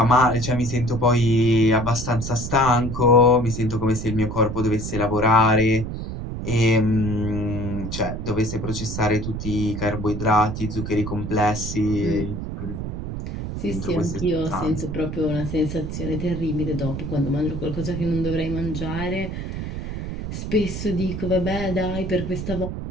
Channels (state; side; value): noise; right; rumble, 6 dB below the sound